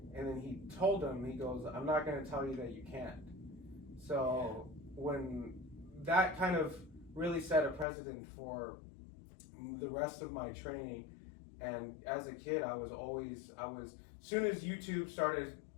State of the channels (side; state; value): right; drops out; at 7.9 s